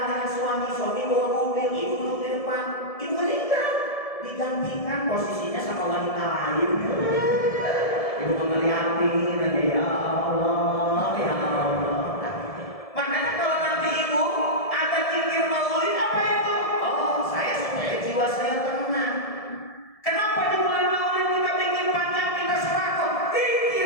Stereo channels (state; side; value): late; right; 1.7 ms